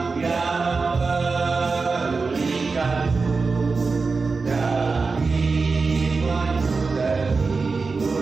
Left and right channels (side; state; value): left; quieter; 4.3 dB